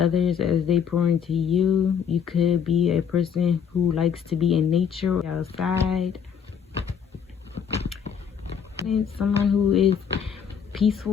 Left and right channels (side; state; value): right; quieter; 7.4 dB